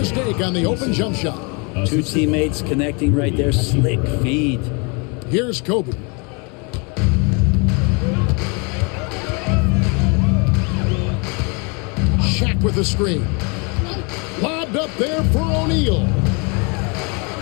on the open jump shot. 2 teammates connecting right there. Slick feed. Here's Kobe. Shaq with the screen. Lobbed up there for O'Neal.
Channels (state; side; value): quieter; right; 32.4 dB